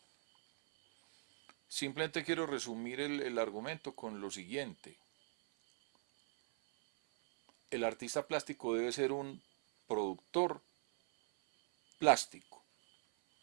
simplemente quiero resumir el argumento con lo siguiente. El artista plástico debe ser un productor plástico,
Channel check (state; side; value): silent; left; 51 dB below the other